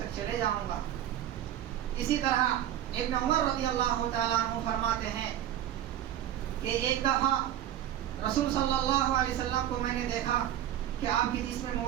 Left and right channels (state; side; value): quieter; left; 11.7 dB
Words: چلے جاؤں گا. اسی طرح ابن عمر رضی اللہ تعالیٰ عنہ فرماتے ہیں کہ ایک دفعہ رسول صلی اللہ علیہ وسلم کو میں نے دیکھا کہ آپ کے جسم